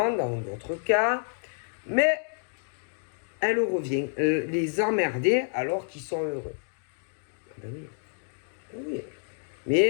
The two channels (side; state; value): right; silent; digital silence